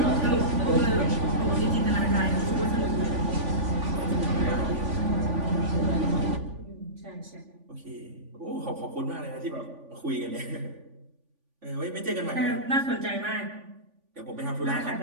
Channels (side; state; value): left; late; 3.5 ms